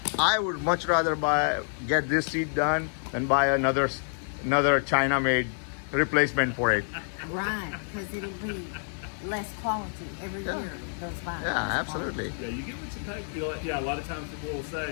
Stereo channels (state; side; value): silent; right; 59 dB below the other